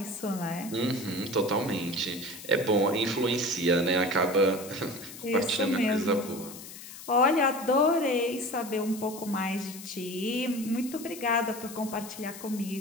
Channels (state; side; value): noise; left; hiss, 14 dB below the sound